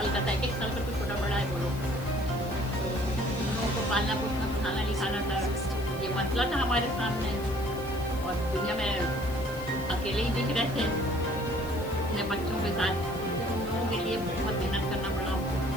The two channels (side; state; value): left; noise; hiss, 18 dB below the sound